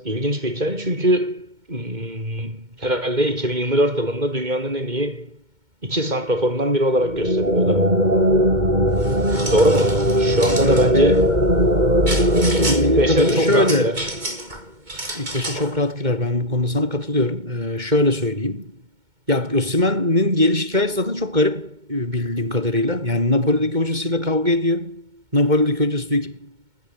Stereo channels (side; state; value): left; late; 2.2 ms